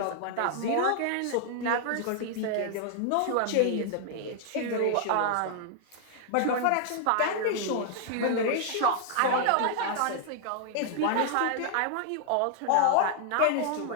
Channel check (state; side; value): different; both; correlation 0.00